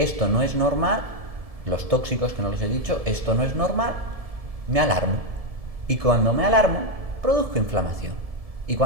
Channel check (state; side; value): late; left; 1.7 ms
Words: no es normal, los tóxicos que no los he dicho, esto no es normal, me alarmo. Y cuando me alarmo, produzco inflamación. Y